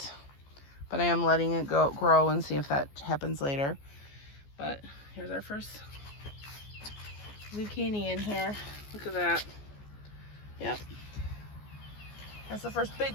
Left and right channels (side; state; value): right; late; 14 ms